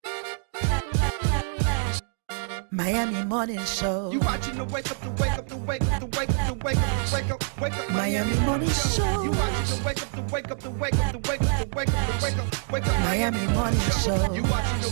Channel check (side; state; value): left; silent; digital silence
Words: Miami Morning Show. You watching the wake up, the wake up, the wake up, the wake up, the wake up, the wake up, wake up. Miami Morning Show. You watching the wake up, the wake up, the wake up, the wake up, the wake up, the wake up, wake up. Miami Morning Show. You watching the